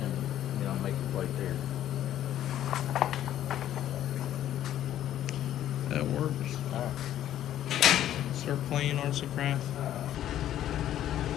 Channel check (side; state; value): right; quieter; 11.9 dB